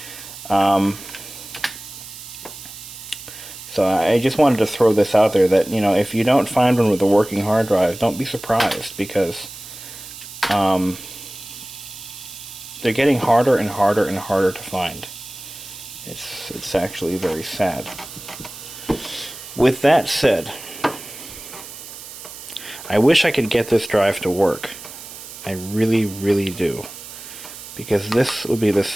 So I just wanted to throw this out there that, you know, if you don't find one with a working hard drive, don't be surprised, because they're getting harder and harder and harder to find. It's actually very sad. With that said, I wish I could get this drive to work. I really, really do. Because this would be the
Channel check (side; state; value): right; noise; hiss, 14 dB below the sound